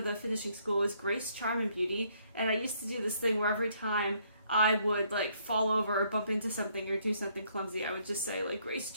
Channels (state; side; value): inverted; both; correlation -0.68